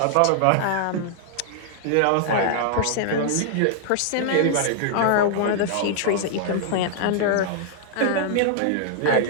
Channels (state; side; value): different; both; correlation -0.01